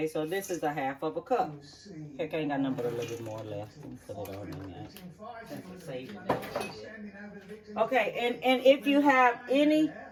so this is a half of a cup. Heck, I ain't got nothing but a little bit more left. Put it on in there. Okay, and if you have any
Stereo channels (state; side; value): identical; both; correlation 1.00